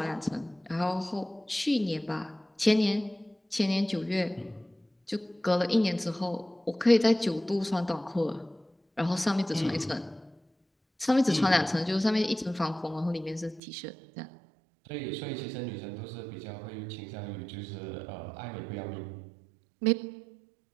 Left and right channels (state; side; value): drops out; left; at 13.6 s